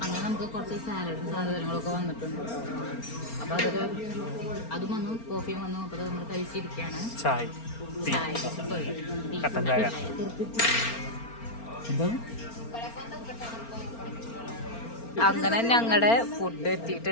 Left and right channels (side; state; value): right; late; 4.4 ms